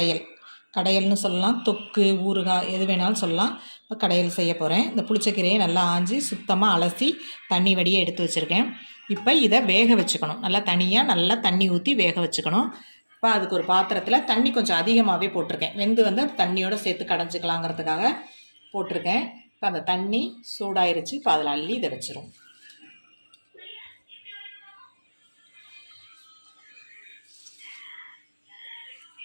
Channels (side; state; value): both; inverted; correlation -1.00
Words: கடையல்னு சொல்லலாம், தொக்கு, ஊறுகாய் எது வேணாலும் சொல்லலாம். இப்போ கடையல் செய்ய போகிறேன். இந்த புளிச்சக்கீரையை நல்லா ஆஞ்சி சுத்தமாக அலசி தண்ணி வடியை எடுத்து வச்சுருக்கேன். இப்போ இதை வேக வச்சுக்கணும். நல்லா தண்ணி ஊற்றி வேக வச்சுக்கணும். இப்போ அதுக்கு ஒரு பாத்திரத்தில் தண்ணி கொஞ்சம் அதிகமாகவே போட்டிருக்கேன். வெந்து தண்ணியோடு சேர்த்து கடைஞ்சிக்கலாங்கிறதுக்காக போட்டிருக்கேன். இப்போ அந்த தண்ணி சூடாயிருச்சு. இப்போ அதில் அள்ளி இதை வச்சிரும்.